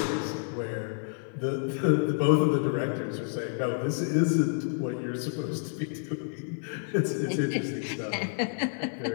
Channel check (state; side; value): silent; right; digital silence